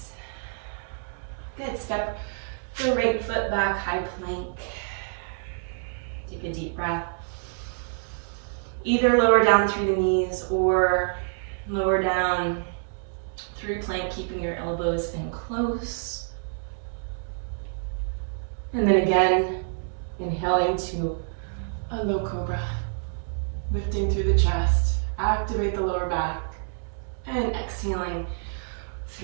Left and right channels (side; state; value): left; silent; 60 dB below the other